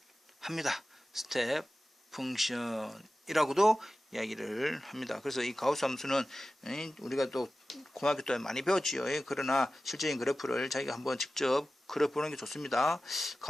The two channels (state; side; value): normal; both; correlation 0.95